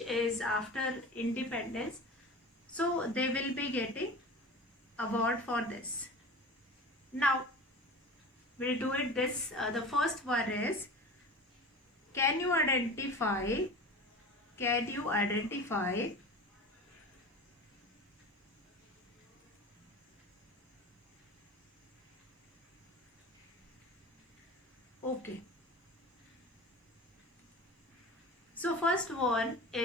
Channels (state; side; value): normal; both; correlation 0.35